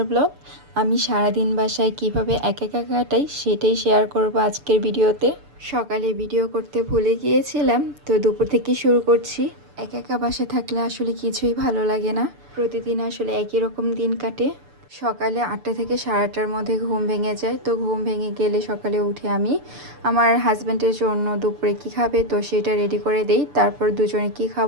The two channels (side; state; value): left; late; 6.9 ms